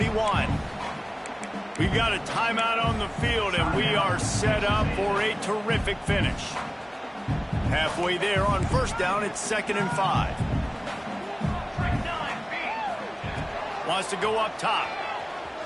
We've got a timeout on the field, and we are set up for a terrific finish. Halfway there on first down, it's 2nd and 5. Wants to go up top.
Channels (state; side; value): identical; both; correlation 1.00